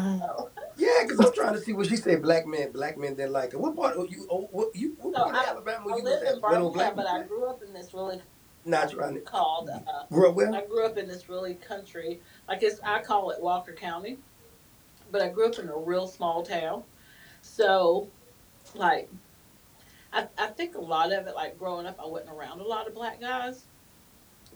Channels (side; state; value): both; identical; correlation 1.00